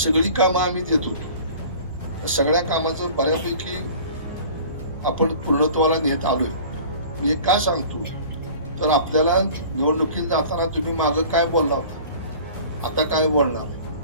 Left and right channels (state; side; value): inverted; both; correlation -0.45